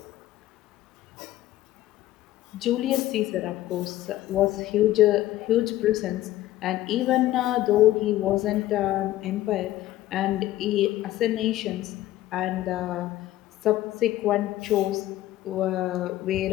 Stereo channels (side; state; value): right; quieter; 14.9 dB